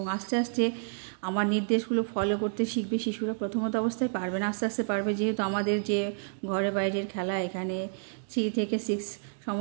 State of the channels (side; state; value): left; silent; digital silence